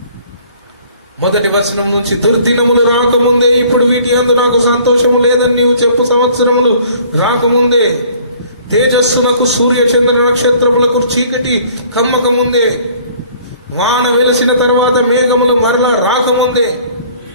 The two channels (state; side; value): inverted; both; correlation -0.55